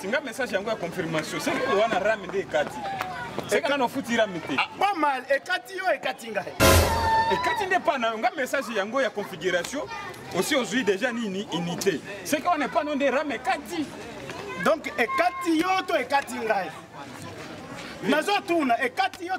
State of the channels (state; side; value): identical; both; correlation 1.00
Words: Nga message yango ya confirmation. C'est que wana Rame nde kati. C'est quand on fout Rame te. Pas mal. Et kati yo et kati nga. Et kati nde pas na nga message yango ya configuration. Aussi aujourd'hui déjà ni unité. C'est qu'on n'est pas non des Rame kati. Donc et kati yo to et kati nga. Nazo tuna et kati yo